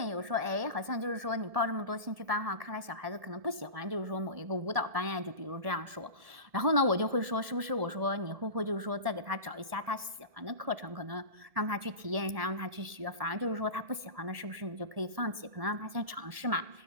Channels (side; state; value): left; late; 1.7 ms